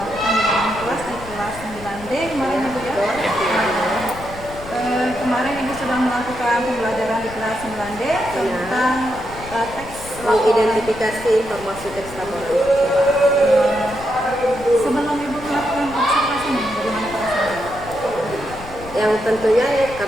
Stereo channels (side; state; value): left; noise; rumble, 15 dB below the sound